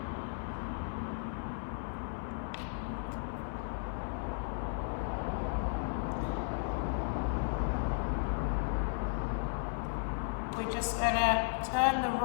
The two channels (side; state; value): right; silent; digital silence